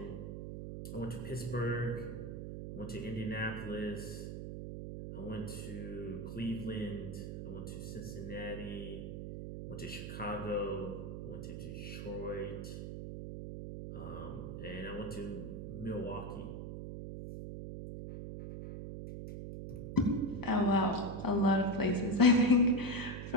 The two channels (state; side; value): noise; right; hum, 7 dB below the sound